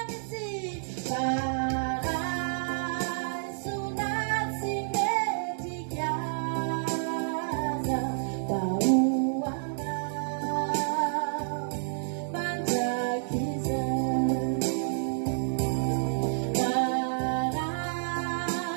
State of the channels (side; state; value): left; silent; 58 dB below the other